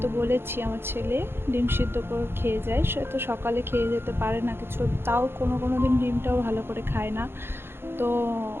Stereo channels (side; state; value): left; late; 0.11 ms